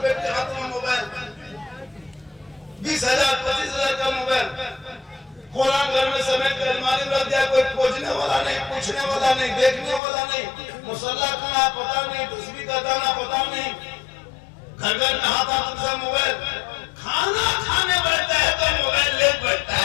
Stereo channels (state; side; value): drops out; right; at 10.0 s